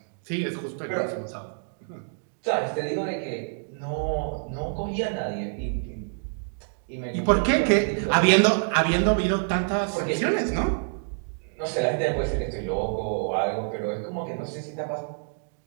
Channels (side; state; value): left; silent; digital silence